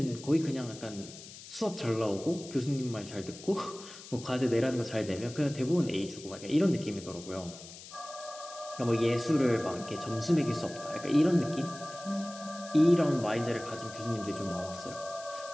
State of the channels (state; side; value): noise; left; hiss, 15 dB below the sound